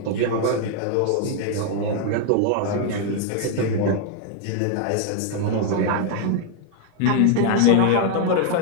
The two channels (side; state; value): both; different; correlation 0.00